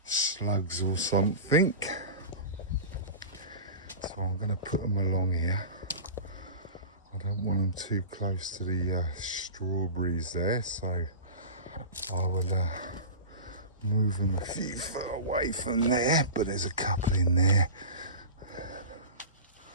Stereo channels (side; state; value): both; inverted; correlation -0.30